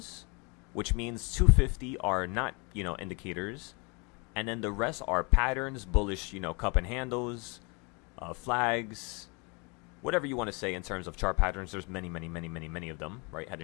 which means 250 are not, indicators. And then the rest are patterns, bullish, cup and handles, flags, whatever you want to say in terms of chart patterns. There's many, many, many, many, many of them, right? Head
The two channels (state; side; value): quieter; right; 31.0 dB